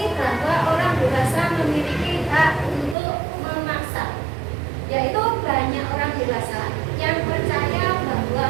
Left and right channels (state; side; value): drops out; left; at 3.0 s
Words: bahwa orang dewasa memiliki hak untuk memaksa, yaitu banyak orang dewasa yang percaya